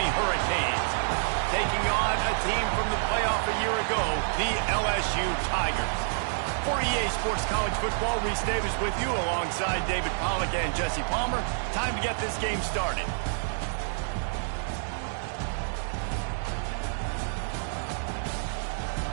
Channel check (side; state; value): left; silent; digital silence